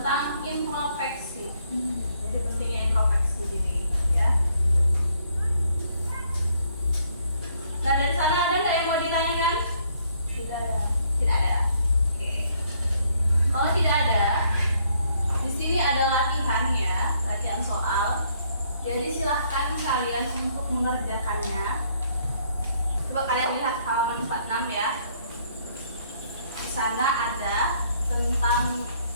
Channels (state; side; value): inverted; both; correlation -0.68